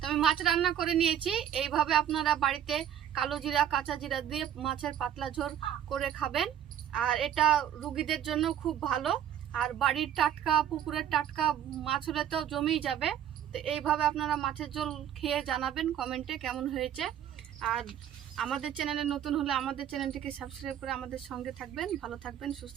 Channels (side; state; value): left; quieter; 10.2 dB